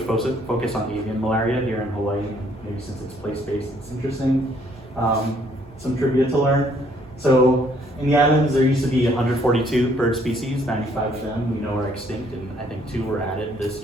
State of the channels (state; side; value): normal; both; correlation 0.65